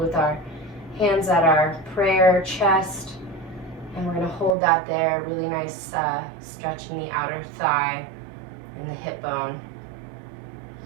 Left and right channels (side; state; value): left; drops out; at 4.5 s